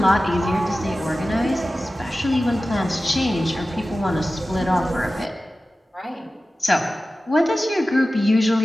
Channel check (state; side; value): normal; both; correlation 0.95